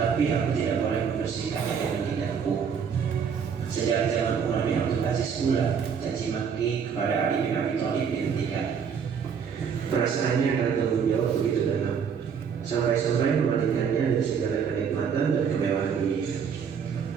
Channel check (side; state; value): left; quieter; 6.9 dB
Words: aku tidak boleh membersihkannya dengan lidahku. Sejak zaman Umar bin Abdul Aziz pula, caci maki kepada Ali bin Abi Thalib dihentikan. Perasaannya akan tanggung jawab begitu dalam, sampai-sampai memalingkannya dari segala kenikmatan dan kemewahan dunia.